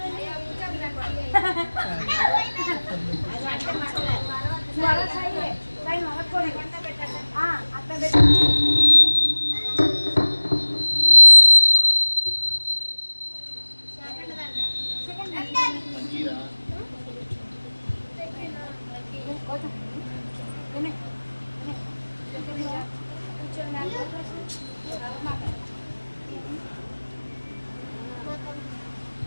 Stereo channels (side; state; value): both; inverted; correlation -1.00